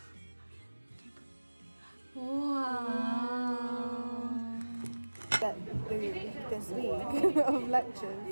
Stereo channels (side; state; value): both; inverted; correlation -1.00